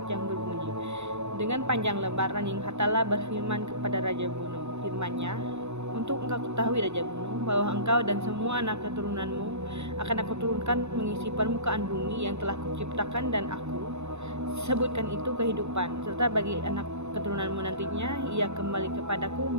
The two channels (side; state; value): left; late; 0.81 ms